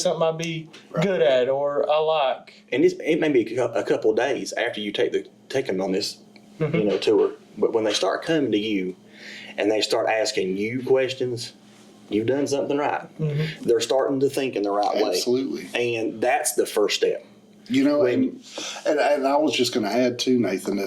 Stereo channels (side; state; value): both; identical; correlation 1.00